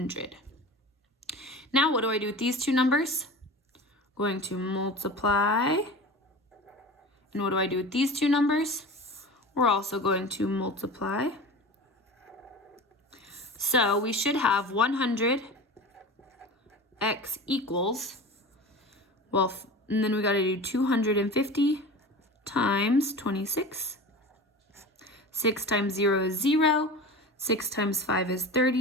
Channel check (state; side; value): normal; both; correlation 0.33